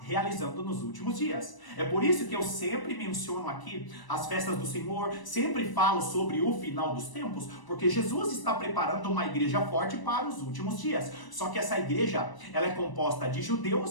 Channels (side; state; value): right; late; 1.0 ms